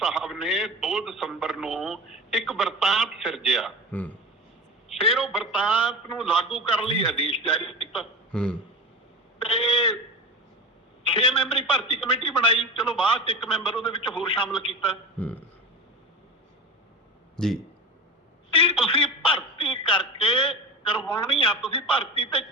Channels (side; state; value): both; normal; correlation 0.29